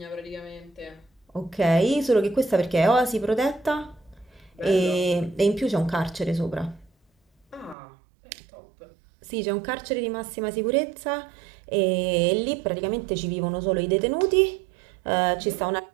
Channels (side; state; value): left; drops out; at 7.8 s